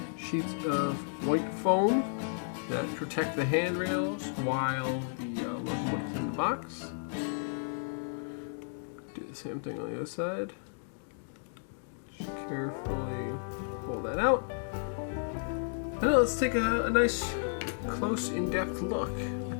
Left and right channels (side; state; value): right; silent; digital silence